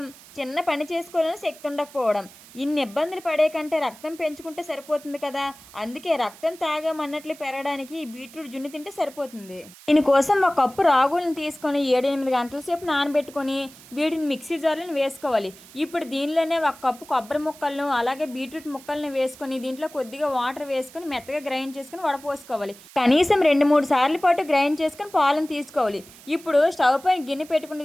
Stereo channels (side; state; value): right; noise; hiss, 21 dB below the sound